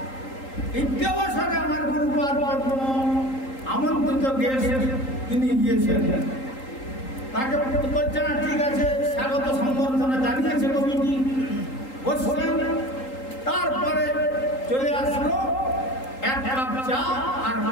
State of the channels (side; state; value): right; late; 3.8 ms